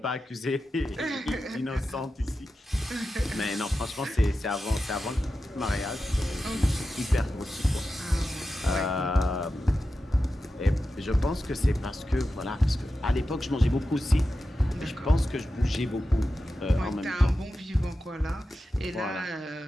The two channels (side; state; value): both; normal; correlation 0.92